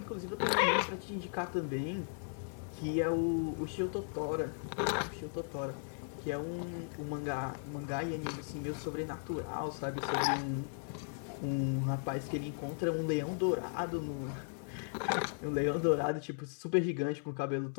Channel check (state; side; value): silent; right; 53 dB below the other